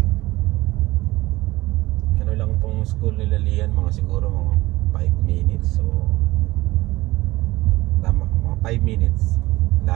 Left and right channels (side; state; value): left; quieter; 18.9 dB